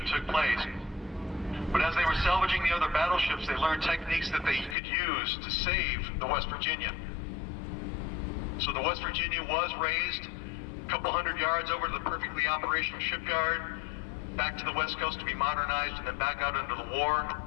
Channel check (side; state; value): right; drops out; at 4.8 s